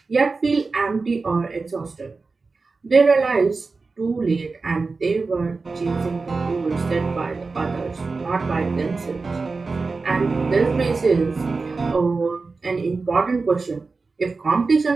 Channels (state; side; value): quieter; left; 4.1 dB